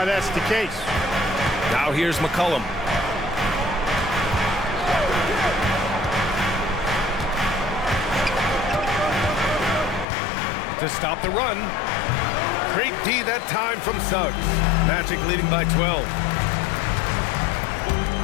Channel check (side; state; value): right; drops out; at 10.1 s